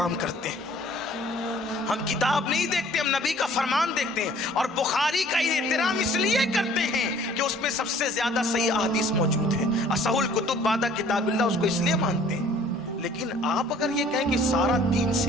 करते हैं। हम किताब नहीं देखते, हम नबी का फरमान देखते हैं। और बुखारी का एहतराम इसलिए करते हैं कि उसमें सबसे ज्यादा सही अहादीस मौजूद है। असहुल कुतुब बादा किताबिल्लाह, उसको इसलिए मानते हैं। लेकिन आप अगर ये कहें कि सारा दीन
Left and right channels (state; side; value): normal; both; correlation 0.54